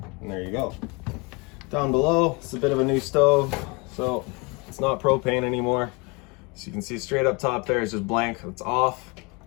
and there you go. Down below, it's a bit of a new stove, so it's not propane anymore. So you can see straight up top there is just blank, it's off.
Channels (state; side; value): quieter; right; 28.5 dB